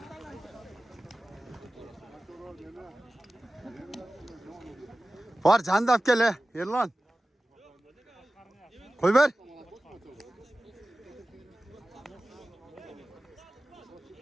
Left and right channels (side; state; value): both; normal; correlation 0.96